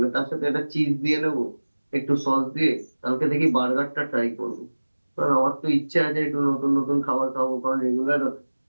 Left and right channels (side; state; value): both; inverted; correlation -1.00